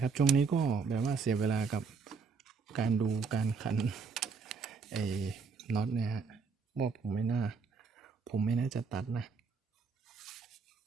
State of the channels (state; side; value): quieter; left; 5.2 dB